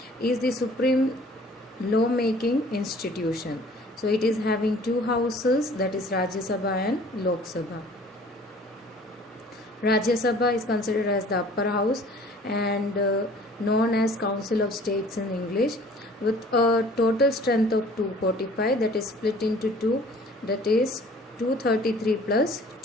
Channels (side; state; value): both; normal; correlation 0.51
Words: is the supreme law-making institution. So it is having two houses, that is Rajya Sabha and Lok Sabha. Rajya Sabha is considered as the upper house and known as Council of States in English, with a total strength of 245, that is split into two, that is 233 plus